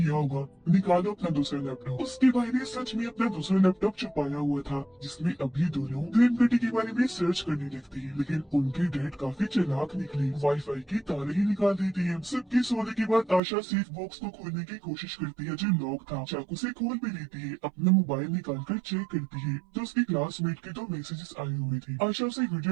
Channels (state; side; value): drops out; left; at 13.4 s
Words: होगा, निकालो अपना दूसरा लैपटॉप। उसके भाई ने सच में अपना दूसरा लैपटॉप छुपाया हुआ था, जिसमें अभी दोनों ग्रीन गटी के बारे में सर्च करने लगती है। लेकिन उनके डैड काफी चालाक निकले, वाईफाई की तारे ही निकाल देती है। सबके सोने के बाद आशा सेफ बॉक्स को खोलने की कोशिश करती है, जो लॉक था। चाकू से खोल भी लेती है, अपना मोबाइल निकाल कर चेक करती है तो उसकी क्लासमेट के 2 मैसेजेस आए हुए थे। आशा उसे